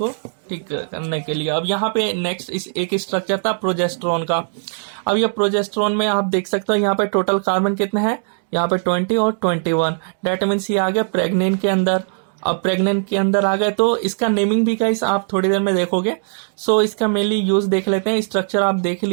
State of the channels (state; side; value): silent; left; digital silence